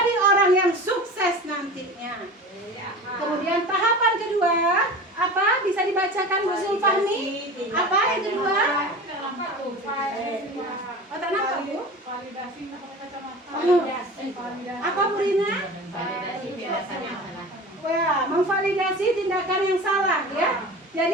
orang yang sukses nantinya. Kemudian tahapan kedua, apa? Bisa dibacakan Bu Zulfahmi? Apa yang kedua? Oh, tak nampak Bu? Apa Bu Rina? Wah, memvalidasi tindakan yang salah ya.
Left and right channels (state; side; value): normal; both; correlation 0.35